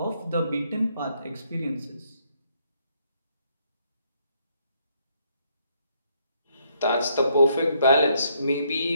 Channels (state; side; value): inverted; both; correlation -0.72